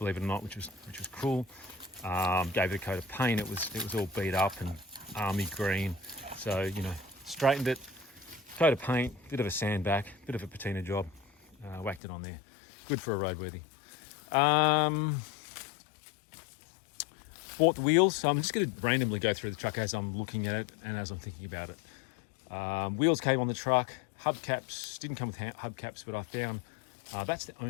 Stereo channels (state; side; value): drops out; right; at 12.0 s